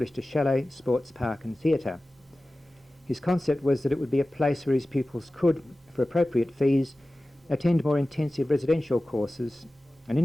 a chalet, sports park and theatre. His concept was that it would be a place where his pupils could, for appropriate fees, attend more intensive residential courses and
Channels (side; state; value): both; normal; correlation 0.96